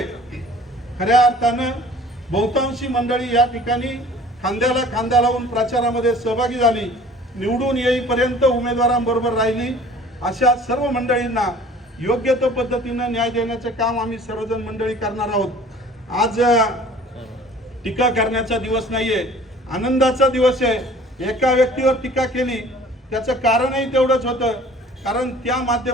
खऱ्या अर्थानं बहुतांशी मंडळी या ठिकाणी खांद्याला खांदा लावून प्रचारामध्ये सहभागी झाली, निवडून येईपर्यंत उमेदवारांबरोबर राहिली. अशा सर्व मंडळींना योग्य तो पद्धतीनं न्याय देण्याचं काम आम्ही सर्वजण मंडळी करणार आहोत. आज टीका करण्याचा दिवस नाहीये, आनंदाचा दिवस आहे. एका व्यक्तीवर टीका केली त्याचं कारणही तेवढंच होतं, कारण त्या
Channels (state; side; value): normal; both; correlation 0.49